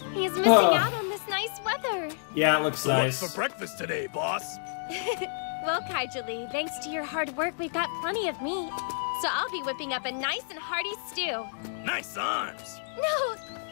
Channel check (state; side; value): silent; right; digital silence